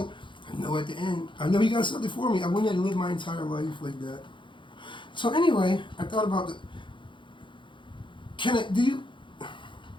at the end, I know you got something for me. I wouldn't have lived my entire life like that. So anyway, I thought about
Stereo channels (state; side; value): late; right; 0.24 ms